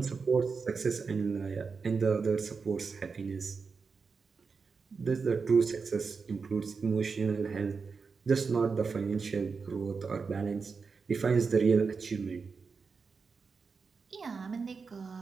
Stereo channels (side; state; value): left; quieter; 5.0 dB